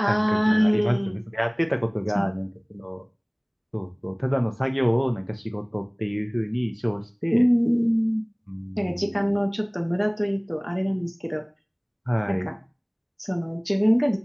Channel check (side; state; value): both; identical; correlation 1.00